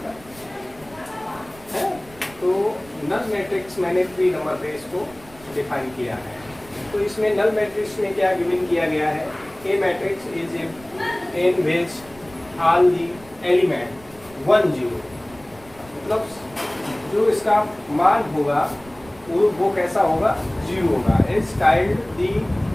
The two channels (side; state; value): right; noise; rumble, 23 dB below the sound